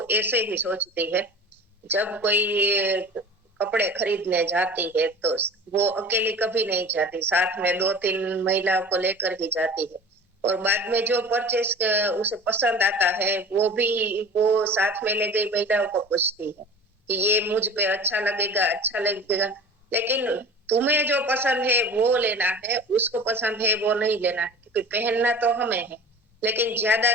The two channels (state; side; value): normal; both; correlation 0.39